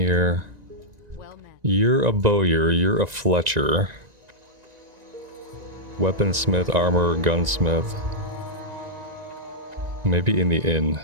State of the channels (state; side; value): late; left; 1.9 ms